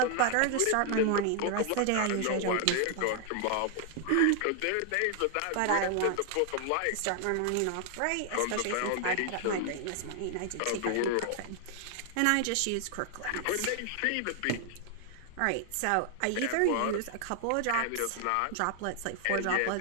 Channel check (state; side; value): different; both; correlation 0.00